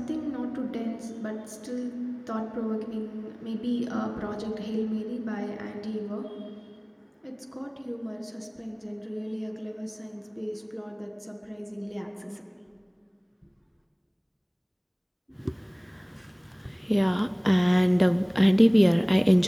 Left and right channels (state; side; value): identical; both; correlation 1.00